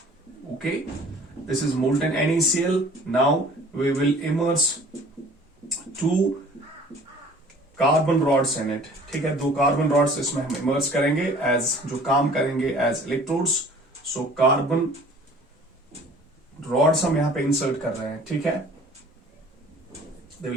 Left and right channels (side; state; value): both; normal; correlation 0.49